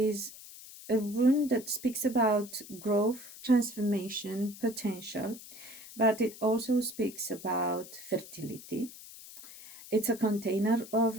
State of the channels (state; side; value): noise; left; hiss, 16 dB below the sound